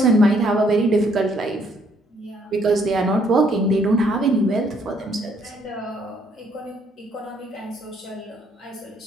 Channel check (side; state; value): both; normal; correlation 0.67